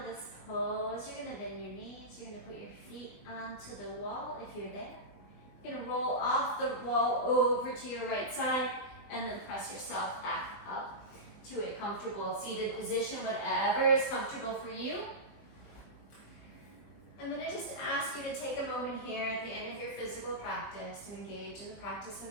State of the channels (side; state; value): right; late; 20 ms